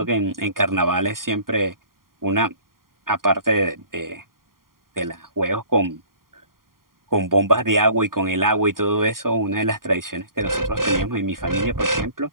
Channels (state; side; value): late; left; 0.91 ms